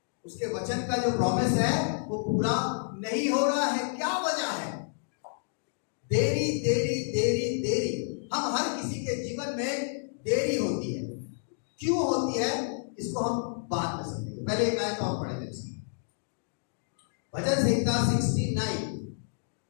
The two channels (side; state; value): right; silent; digital silence